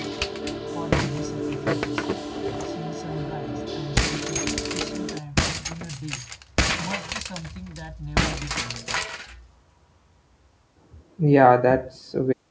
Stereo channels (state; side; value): identical; both; correlation 1.00